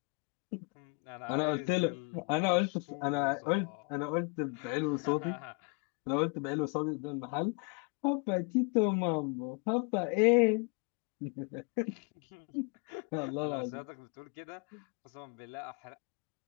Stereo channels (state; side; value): quieter; right; 34.5 dB